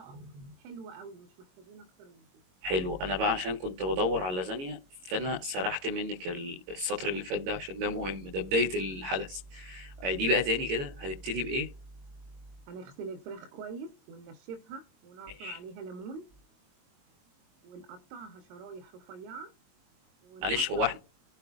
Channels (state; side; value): late; left; 22 ms